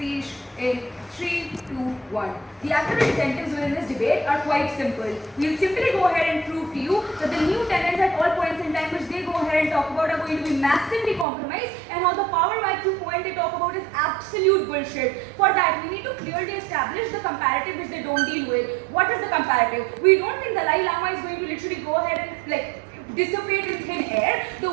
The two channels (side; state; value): left; drops out; at 11.2 s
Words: in 3, 2, 1. The academic incentives within this debate are quite simple. We'll simply go ahead and prove to you that the new tenants at all points in time which they go ahead and talk about are going to be massively compromised, and how the power vacuum point they talk about is absolute bullshit. For that, we need to clearly establish the comparative which they don't deal with. What is the comparative? We don't think Dalai Lama is going to literally go ahead and like dissipate in thin air. The